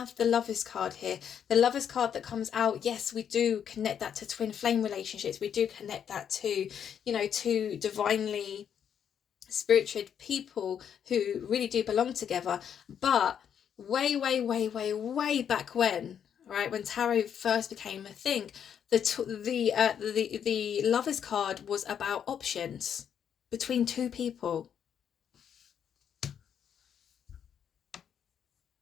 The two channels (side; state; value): right; quieter; 8.4 dB